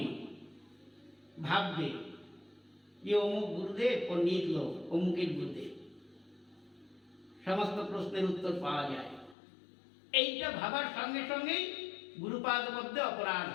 ভাববে যে অমুক গুরুদেব পণ্ডিত লোক, অমুকের গুরুদেব, সমস্ত প্রশ্নের উত্তর পাওয়া যায়। এইটা ভাবার সঙ্গে সঙ্গেই গুরুপাদ মধ্যে অপরাধ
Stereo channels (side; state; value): right; drops out; at 9.3 s